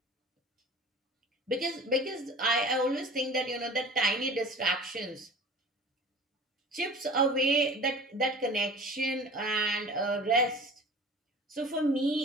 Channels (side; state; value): both; normal; correlation 0.41